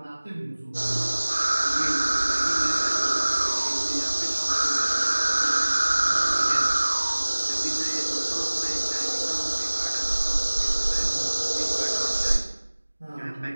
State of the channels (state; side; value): inverted; both; correlation -1.00